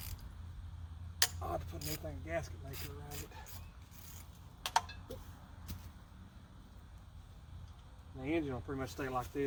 I'll have to put anything gasket maker around it. The engine will pretty much stay like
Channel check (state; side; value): identical; both; correlation 1.00